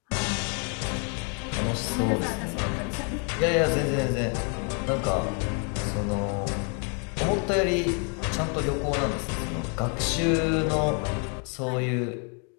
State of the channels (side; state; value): right; quieter; 37.5 dB